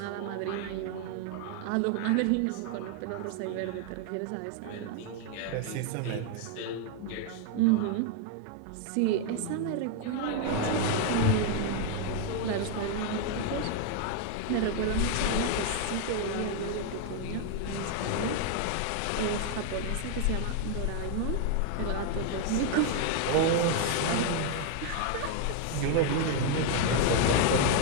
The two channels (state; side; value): different; both; correlation 0.00